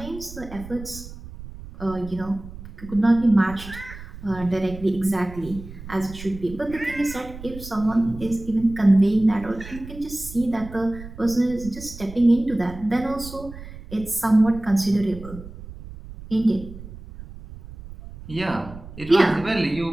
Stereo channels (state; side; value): noise; right; rumble, 14 dB below the sound